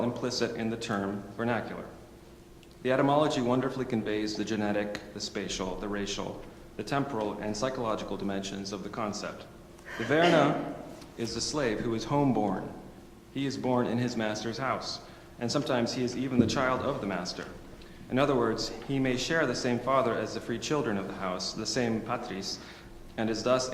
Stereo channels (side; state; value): both; identical; correlation 1.00